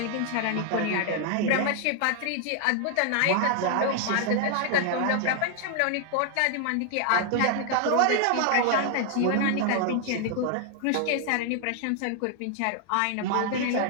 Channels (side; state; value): both; different; correlation 0.00